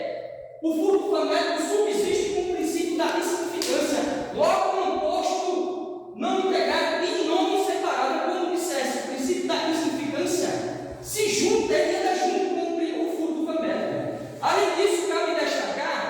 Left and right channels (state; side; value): identical; both; correlation 1.00